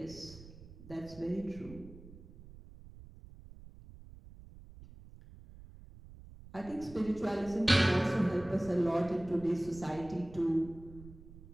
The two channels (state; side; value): noise; right; rumble, 18 dB below the sound